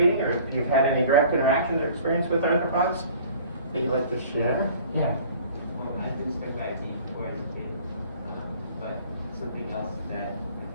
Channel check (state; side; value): inverted; both; correlation -0.49